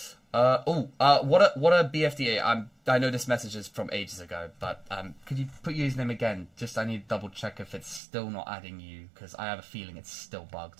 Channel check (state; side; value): drops out; left; at 8.0 s